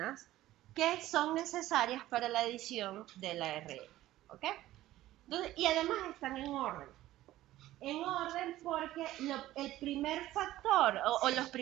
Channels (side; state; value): left; quieter; 15.1 dB